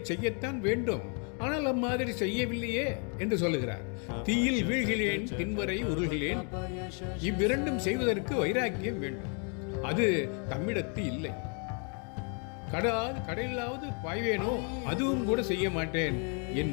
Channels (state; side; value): quieter; right; 39.1 dB